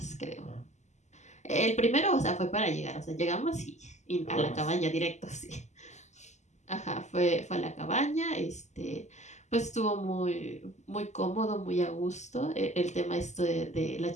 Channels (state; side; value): late; right; 0.33 ms